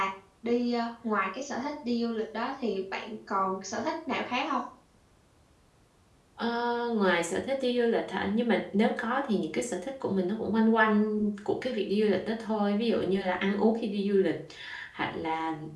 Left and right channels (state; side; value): identical; both; correlation 1.00